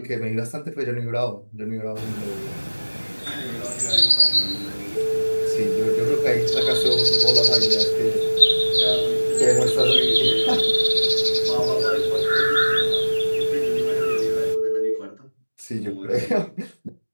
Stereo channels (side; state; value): both; inverted; correlation -1.00